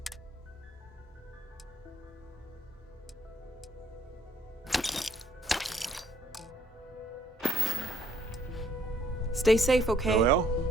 Stay safe, okay? Well,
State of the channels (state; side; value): normal; both; correlation 0.66